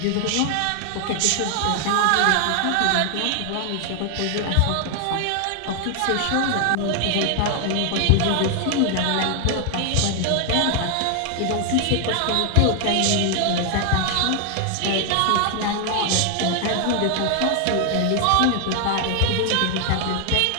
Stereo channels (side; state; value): both; different; correlation 0.00